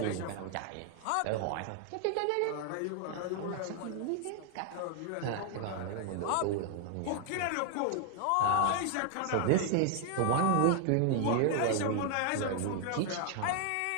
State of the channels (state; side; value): different; both; correlation 0.00